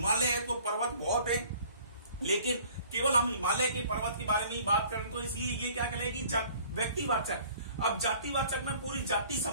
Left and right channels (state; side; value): inverted; both; correlation -0.52